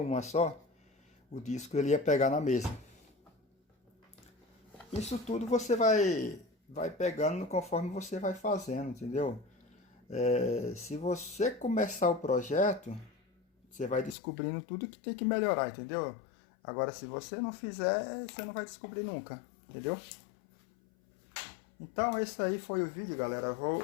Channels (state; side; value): drops out; right; at 14.2 s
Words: só, o disco ele ia pegar na mesa. Isso tudo você vai pegando conforme você vai fazendo, entendeu? Se você começar o projeto, você vai descobrindo tudo que tem que melhorar, entendeu? Agora, se você não fizer, você não vai descobrir nunca, entendeu? Então, esse aí foi o vídeo, galera.